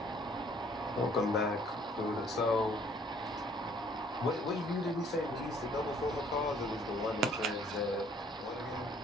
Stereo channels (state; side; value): normal; both; correlation 0.60